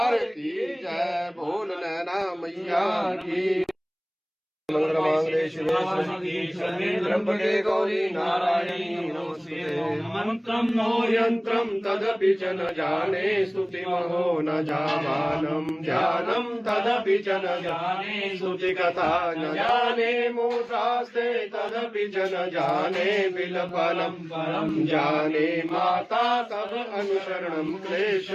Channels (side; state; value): both; identical; correlation 1.00